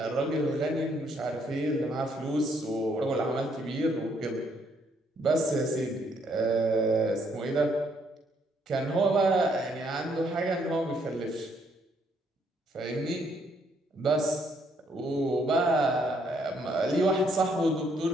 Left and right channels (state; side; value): normal; both; correlation 0.70